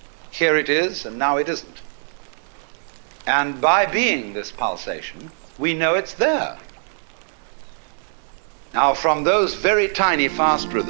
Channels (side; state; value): left; silent; digital silence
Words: Here it is, and now it isn't. And by being this pulsation, we know it's there. Now, from those very tiny fast